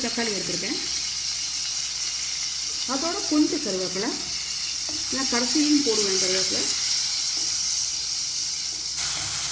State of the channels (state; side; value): identical; both; correlation 1.00